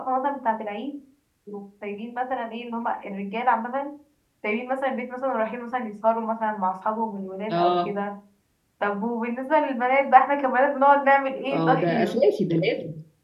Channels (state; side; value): identical; both; correlation 1.00